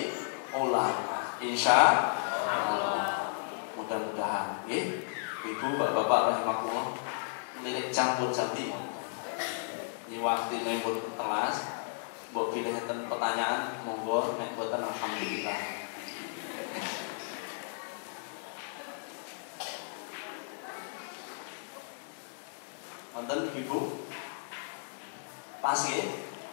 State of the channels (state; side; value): silent; right; digital silence